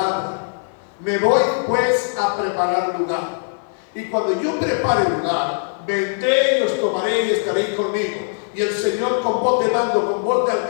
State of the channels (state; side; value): silent; right; digital silence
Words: Me voy pues a preparar lugar. Y cuando yo prepare lugar, vendré y os tomaré y estaréis conmigo. Y el Señor con voz de mando, con voz de